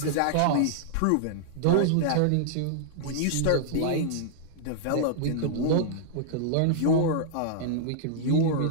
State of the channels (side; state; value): both; different; correlation -0.01